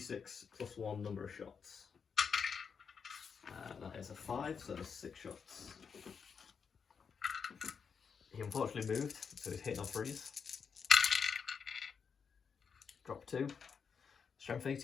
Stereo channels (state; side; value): quieter; right; 6.3 dB